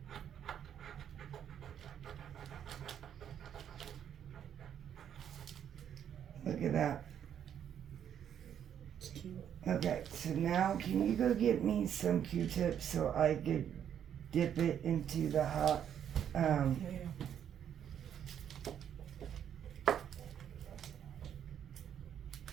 Look at that. It's cute. Okay, so now can you go get me some Q-tips so I could dip it into the hot, Yeah.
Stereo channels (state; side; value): quieter; left; 9.2 dB